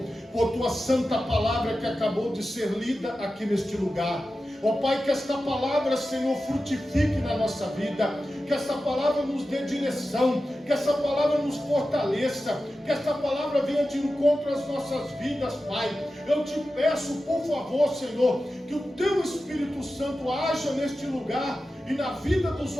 por tua santa palavra que acabou de ser lida aqui neste lugar. Ó Pai, que esta palavra, Senhor, frutifique na nossa vida, que esta palavra nos dê direção, que esta palavra nos fortaleça, que esta palavra venha de encontro às nossas vidas, Pai. Eu te peço, por favor, Senhor, que o teu Espírito Santo haja neste lugar e na vida dos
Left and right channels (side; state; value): both; normal; correlation 0.93